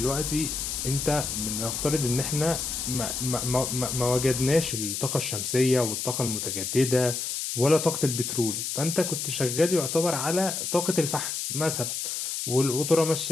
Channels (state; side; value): noise; left; hiss, 3 dB below the sound